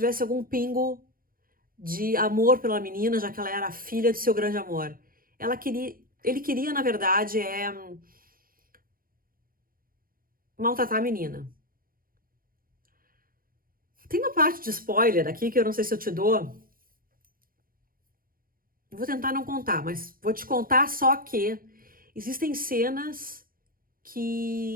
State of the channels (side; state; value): left; late; 0.42 ms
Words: algum pingo de amor pela menina, já que ela era a filha de seu grande amor. Ele queria, na verdade, maltratar a menina. Tem uma parte de spoiler aqui que eu não sei se eu te dou, Eu vou tentar não contar, mas vou te contar só que existem cenas